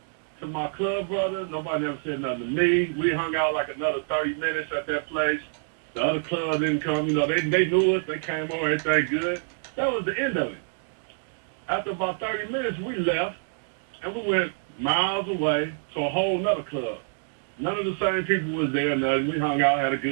to my club brother. Nobody never said nothing to me. We hung out like another 30 minutes at that place. The other club didn't come. You know, they knew us. They came over. Everything good. That was the end of it. After about 30 minutes, we left, and we went miles away to a whole nother club. None of the same people was there. Nothing. We hung out, had a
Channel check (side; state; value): left; silent; digital silence